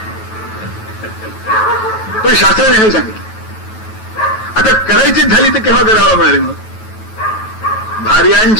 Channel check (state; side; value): late; right; 9.2 ms